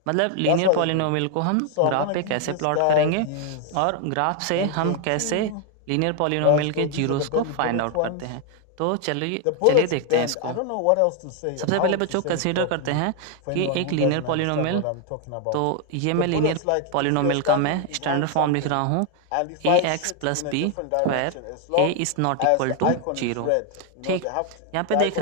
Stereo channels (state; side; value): different; both; correlation 0.01